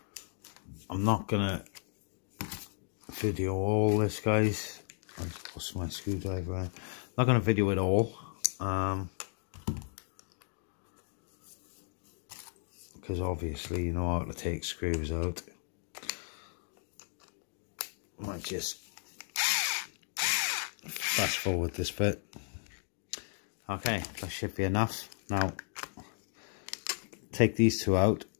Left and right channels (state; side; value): silent; right; 55 dB below the other